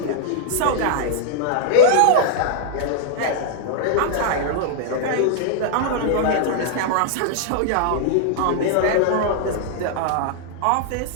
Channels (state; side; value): different; both; correlation -0.01